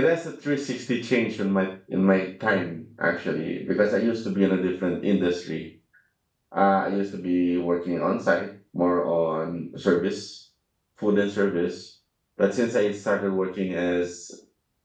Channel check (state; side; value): identical; both; correlation 1.00